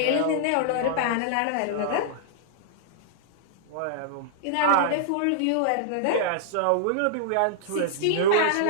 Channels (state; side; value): different; both; correlation -0.01